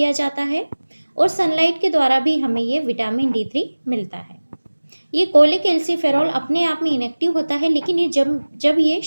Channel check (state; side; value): inverted; both; correlation -1.00